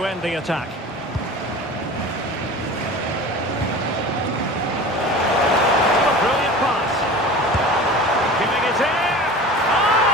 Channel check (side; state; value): both; normal; correlation 0.37